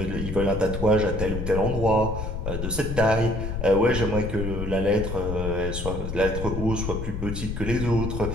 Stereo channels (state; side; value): noise; left; rumble, 5 dB below the sound